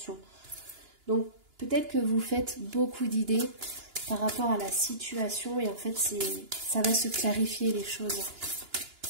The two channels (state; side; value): late; left; 2.9 ms